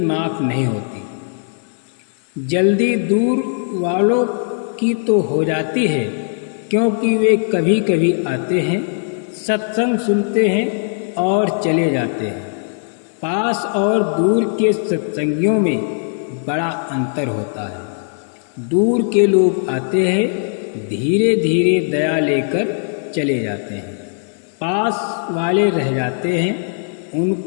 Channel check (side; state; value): right; silent; digital silence